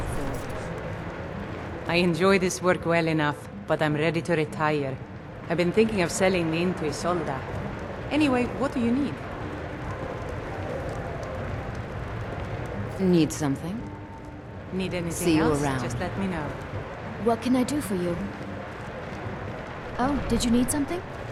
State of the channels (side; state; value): both; identical; correlation 1.00